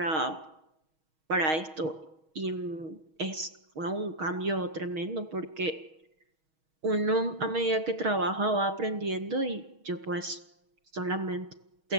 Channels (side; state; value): left; late; 6.3 ms